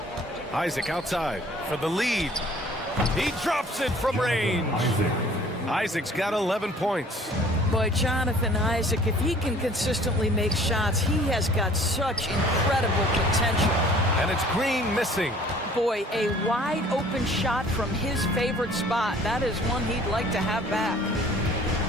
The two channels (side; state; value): both; normal; correlation 0.53